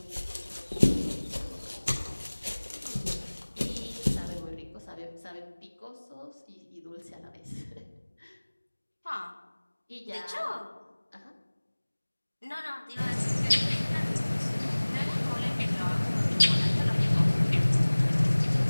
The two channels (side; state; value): both; inverted; correlation -1.00